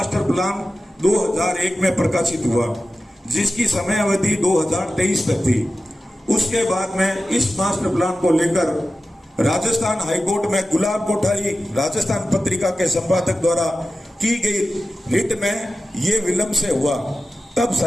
प्लान 2001 में प्रकाशित हुआ, जिसकी समय अवधि 2023 तक थी। उसके बाद में इस मास्टर प्लान को लेकर राजस्थान हाईकोर्ट में गुलाब कोठारी राजस्थान पत्रिका के संपादक द्वारा की गई रिट में ये विलंब से हुआ। तब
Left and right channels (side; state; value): both; normal; correlation 0.94